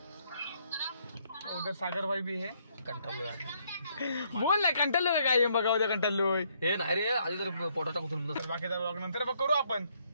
उधर सागर भाई भी है. कंटाळलोय बोल ना कंटाळलोय काय बघा उद्या कंटाळलोय. हे नाही रे आधी तर पोटाचा कुठून बाकीचा ब्लॉग नंतर करू आपण.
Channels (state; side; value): inverted; both; correlation -0.70